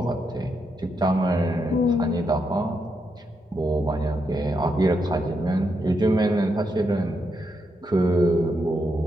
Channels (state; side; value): normal; both; correlation 0.81